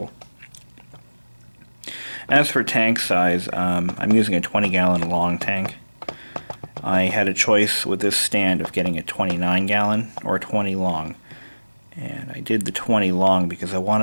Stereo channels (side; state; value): both; inverted; correlation -1.00